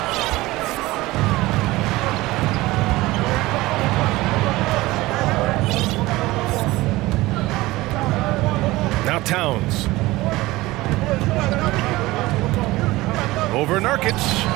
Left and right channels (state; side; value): quieter; left; 19.2 dB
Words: Now Towns. Over Nurkic.